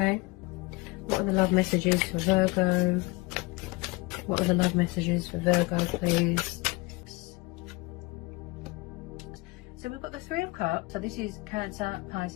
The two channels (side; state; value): right; quieter; 24.4 dB